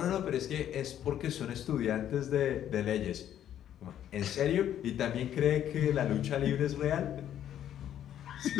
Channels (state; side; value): quieter; right; 10.7 dB